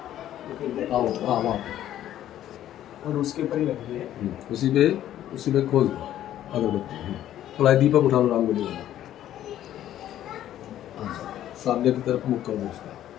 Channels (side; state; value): right; quieter; 12.1 dB